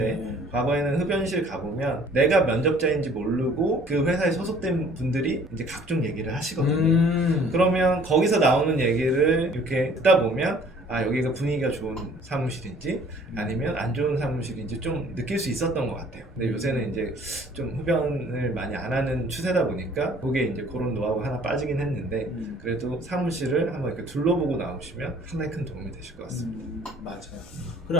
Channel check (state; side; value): normal; both; correlation 0.55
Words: 네. 과거에는 흡연실 가보면 내가 면접자인지 모르고 그 회사에 소속된 분들이 이제 각종 얘기를 하시거든요. 그러면 거기서 나오는 얘기를 이렇게 듣다 보면 아 여기가 분위기가 좋은 사무실인지 아니면 안 좋은 사무실인지 좀 느낄 수 있었던 것 같아요. 근데 요새는 이제 좀 흡연을 많이 안 하는 추세다 보니까 그게 이제 그런 노하우가 하나 빠지긴 했는데 그래도 사무실을 한번 이렇게 둘러보고 나오시면 상당히 큰 도움이 되실 것 같습니다. 맞아요.